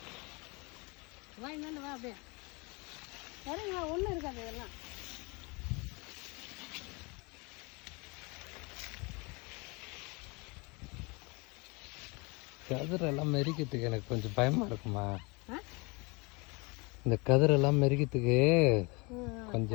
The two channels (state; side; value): quieter; right; 28.4 dB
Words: வா, என்னன்னு வா, அப்படியே சரிங்களா, ஒன்றும் இருக்காது இதெல்லாம். கதிரெல்லாம் மெரிக்கிறதுக்கு எனக்கு கொஞ்சம் பயமா இருக்குமா. இந்த கதிரெல்லாம் மெரிக்கிறதுக்கு